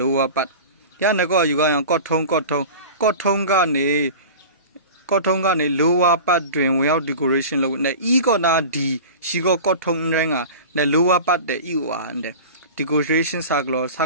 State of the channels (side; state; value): both; inverted; correlation -0.35